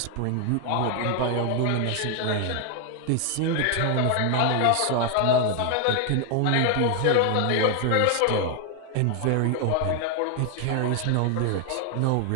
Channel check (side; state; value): both; different; correlation 0.00